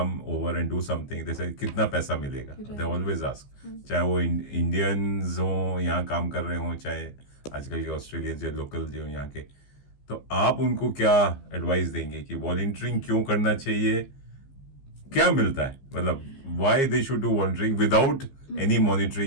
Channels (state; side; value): late; right; 15 ms